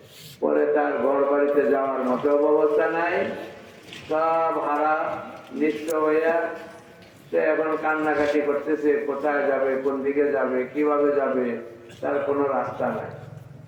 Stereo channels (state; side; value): identical; both; correlation 1.00